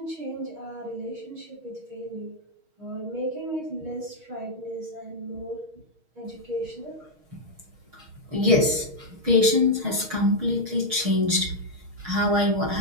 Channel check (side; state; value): left; late; 6.4 ms